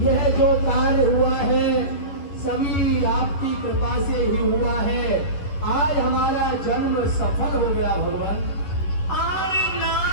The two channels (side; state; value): right; late; 11 ms